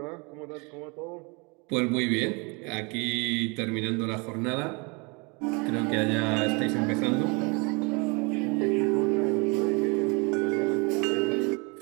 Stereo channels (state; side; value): quieter; left; 30.2 dB